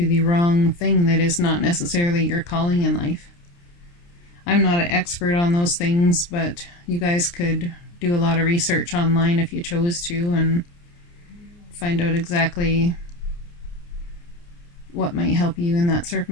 the wrong thing that is not necessarily your calling in life. I'm not an expert on those things, but you guys could do a lot of research online if you chose to and find out exactly what might help you in that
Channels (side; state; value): right; late; 29 ms